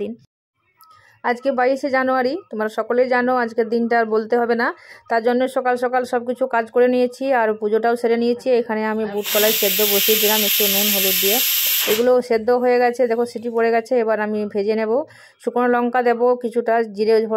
দিন, আজকে 22শে জানুয়ারি। তোমরা সকলেই জানো আজকের দিনটা আর বলতে হবে না। তার জন্য সকাল সকাল সব কিছু কাজ করে নিয়েছি আর পুজোটাও সেরে নিয়েছি। এখানে আমি বুট কলাই সেদ্ধ বসিয়ে দিলাম একটু নুন হলুদ দিয়ে। এগুলো সেদ্ধ হয়ে গেছে, দেখো সিটি পড়ে গেছে। এবার আমি ভেজে নেব। শুকনো লঙ্কা দেবো, কিছুটা জিরে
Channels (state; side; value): identical; both; correlation 1.00